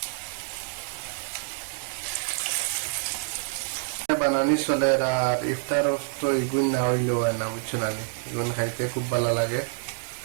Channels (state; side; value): silent; left; digital silence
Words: বানানি চলে, আর ইফতার তো ইগুন না হইলেও হয় না, বুঝছো না? ইগুন খাইতে খুব ভালো লাগে।